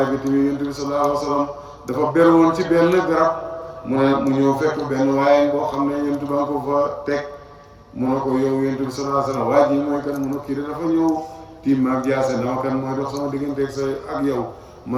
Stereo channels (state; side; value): identical; both; correlation 1.00